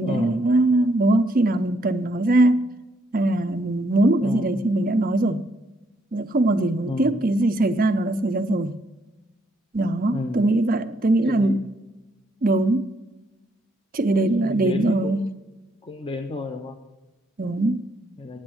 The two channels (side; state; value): both; normal; correlation 0.72